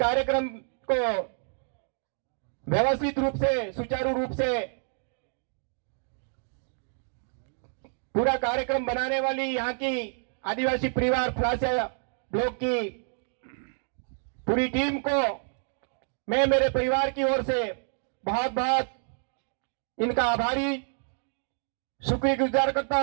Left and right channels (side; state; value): left; silent; 59 dB below the other